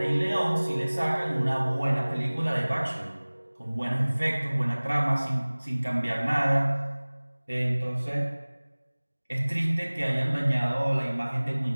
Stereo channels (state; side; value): inverted; both; correlation -1.00